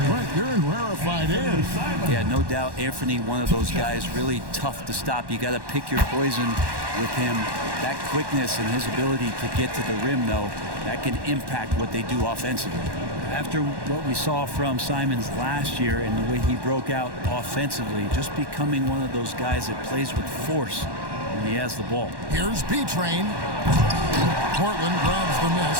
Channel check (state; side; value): late; left; 1.1 ms